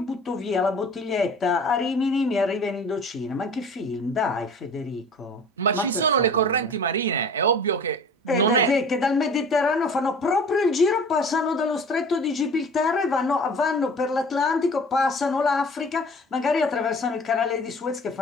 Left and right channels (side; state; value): both; normal; correlation 0.44